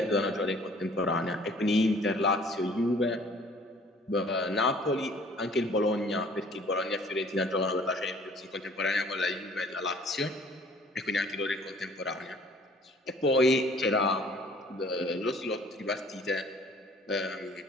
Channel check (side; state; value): both; normal; correlation 0.54